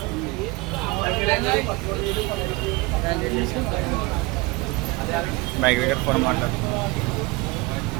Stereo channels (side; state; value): left; quieter; 24.0 dB